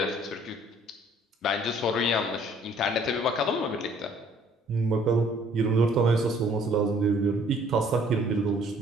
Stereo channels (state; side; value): normal; both; correlation 0.59